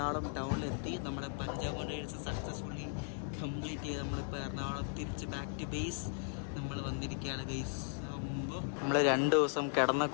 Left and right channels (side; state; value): right; silent; 53 dB below the other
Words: ടൗണിലെത്തി. നമ്മുടെ പഞ്ചാബ് ഡേയ്സ് സക്സസ്ഫുള്ളി കംപ്ലീറ്റ് ചെയ്ത് നമ്മളിപ്പോൾ എറണാകുളം തിരിച്ച് ബാക്ക് ടു ബേസ് നമ്മൾ വന്നിരിക്കുകയാണ് ഗൈസ്. നമ്മൾ 2 ദിവസം കിടന്ന